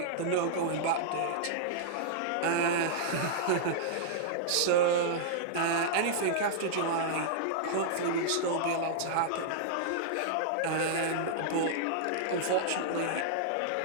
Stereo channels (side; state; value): both; different; correlation -0.02